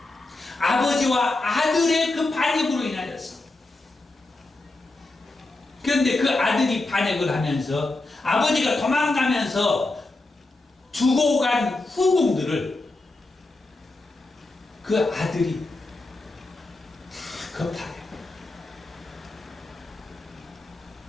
아버지와 아들의 그 반역으로 인하여서. 그런데 그 아들이 반역을 하면서 아버지가 도망가면서 두고 간 후궁들을 그 아들이 다 겁탈해요.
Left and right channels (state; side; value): quieter; right; 3.0 dB